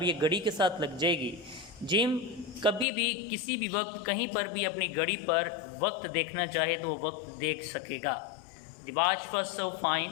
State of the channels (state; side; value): drops out; right; at 2.9 s